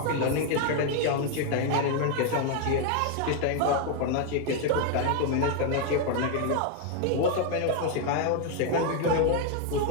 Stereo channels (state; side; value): different; both; correlation 0.01